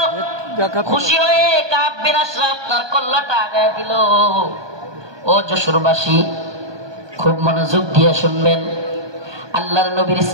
খুশি হয়ে কাব বিন আশরাফ তার কল্লাটা আগায় দিল। ও যশোরবাসী, খুব মনোযোগ দিয়ে শুনবেন। আল্লাহর নবীর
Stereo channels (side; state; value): left; late; 1.2 ms